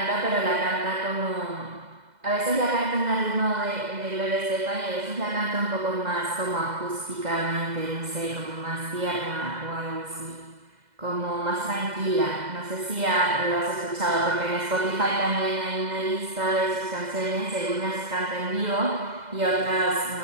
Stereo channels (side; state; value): left; late; 2.0 ms